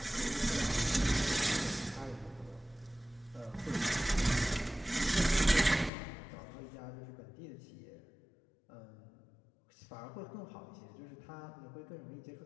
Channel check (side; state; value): right; drops out; at 5.9 s